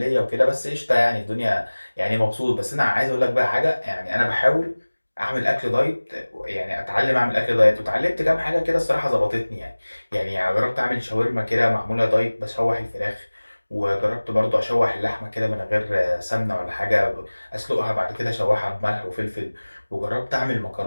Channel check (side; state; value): both; inverted; correlation -1.00